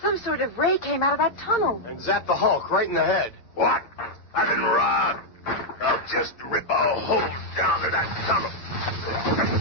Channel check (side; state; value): right; late; 8.7 ms